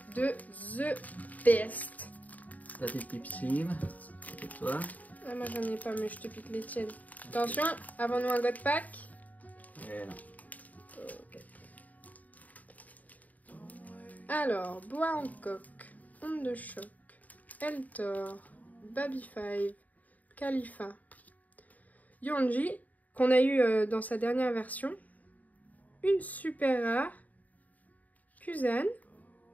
de The Best. La petite Pipsime, c'est toi. Ah, moi j'en ai pas mais je te pique les tiennes. Attention, avant nous un God Pack. Et non. Okay. Alors, Bois Hancock, Onde de Choc, Eltor, Baby 5, Khalifa, Yonji, qu'on a eu dans sa dernière version, une super rare, Kuzan,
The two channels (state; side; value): late; right; 0.075 ms